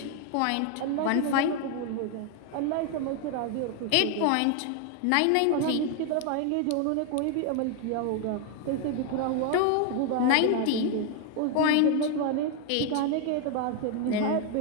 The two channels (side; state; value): both; different; correlation 0.01